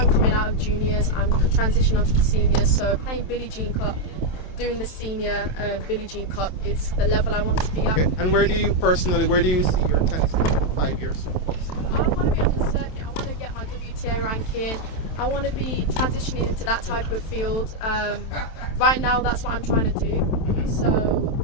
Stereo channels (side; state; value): right; late; 27 ms